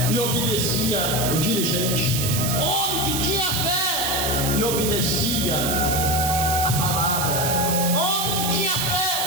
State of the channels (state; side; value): noise; right; hiss, 1 dB below the sound